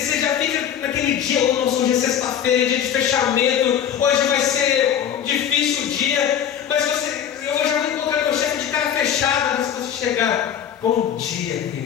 já fica naquele dia: hoje é sexta-feira, dia de fechamento, hoje vai ser difícil o dia, mas eu já vou encontrar meu chefe de cara fechada. Mas se você chegar: bom dia,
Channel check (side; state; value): right; quieter; 9.1 dB